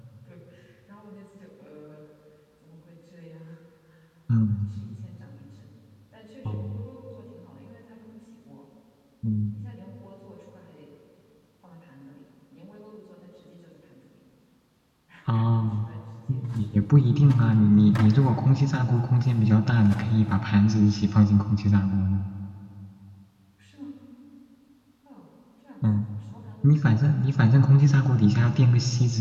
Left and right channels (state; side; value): identical; both; correlation 1.00